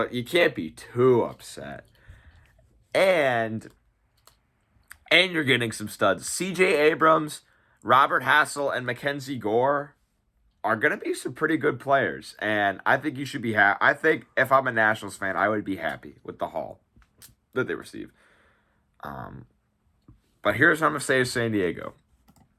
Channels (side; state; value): both; identical; correlation 1.00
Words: you can't be too upset. And you're getting some studs. C.J. Abrams, Robert Hassel, and Mackenzie Gore are going to be some pretty good players. And I think you should be happy. I think if I'm a Nationals fan, I would be happy with the haul that they receive. But here's what I'm going to say to San Diego.